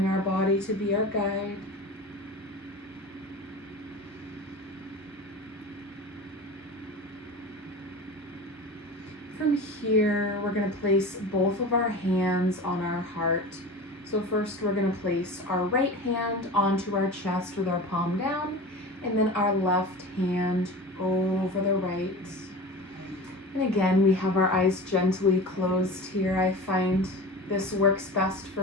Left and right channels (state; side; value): normal; both; correlation 0.32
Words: our body to be our guide. From here, we're going to place both of our hands on our heart. So first we're going to place our right hand onto our chest with our palm down, and then our left hand over the right. And again, we have our eyes gently closed here. I find this works best